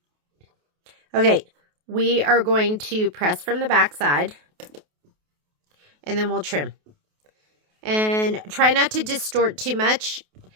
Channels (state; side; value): late; left; 28 ms